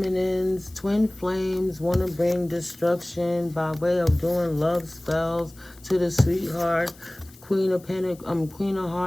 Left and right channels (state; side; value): noise; left; hiss, 24 dB below the sound